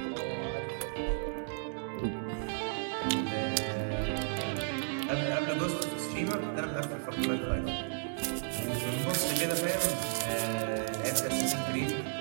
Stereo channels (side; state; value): left; silent; digital silence